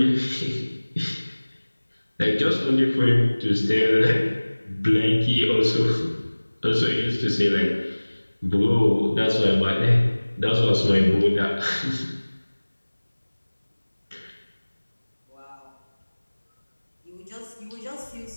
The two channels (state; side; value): inverted; both; correlation -1.00